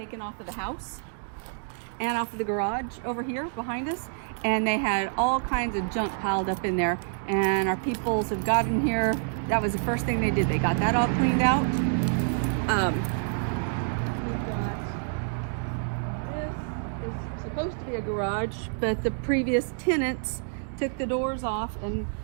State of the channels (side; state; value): left; silent; digital silence